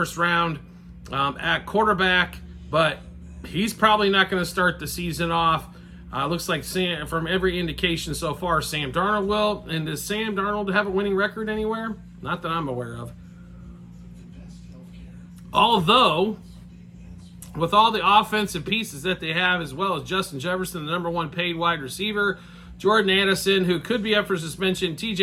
round at quarterback, but he's probably not going to start the season off. Looks like from every indication so far, Sam Darnold will. And does Sam Darnold have a winning record anywhere? Not that I'm aware of. Although, with all the offensive pieces that they have, as well as Justin Jefferson, the number one paid wide receiver, Jordan Addison, who could be up for suspension,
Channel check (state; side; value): identical; both; correlation 1.00